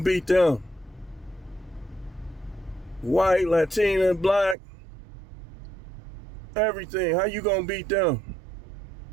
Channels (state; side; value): drops out; left; at 4.5 s